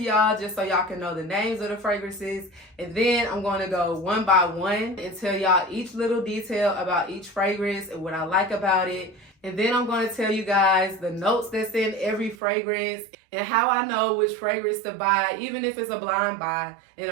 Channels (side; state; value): left; drops out; at 12.4 s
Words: just so y'all can know the names of the fragrances, and then I'm going to go one by one and tell y'all each little detail about each fragrance and what I like about it. And then I'm going to tell you guys the notes that's in every fragrance and how I know which fragrance to buy, even if it's a blind buy. And